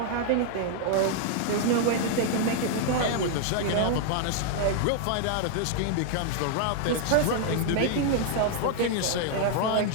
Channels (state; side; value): different; both; correlation 0.00